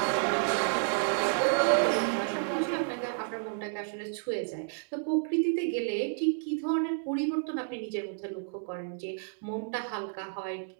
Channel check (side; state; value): left; silent; digital silence